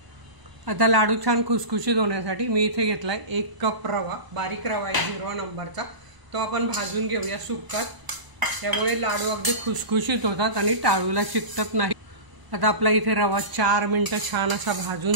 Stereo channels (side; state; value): left; late; 1.0 ms